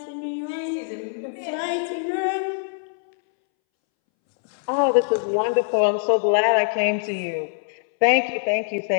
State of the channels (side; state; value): right; silent; 63 dB below the other